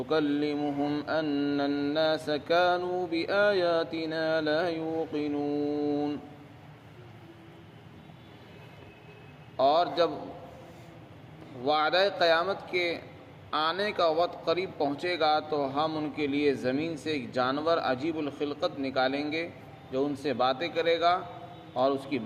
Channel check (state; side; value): identical; both; correlation 1.00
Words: أن الناس كانوا بآياتنا لا يوقنون۔ اور جب وعدہ قیامت کے آنے کا وقت قریب پہنچے گا تو ہم ان کے لیے زمین سے ایک جانور عجیب الخلقت نکالیں گے جو ان سے باتیں کرے گا، اور اس کی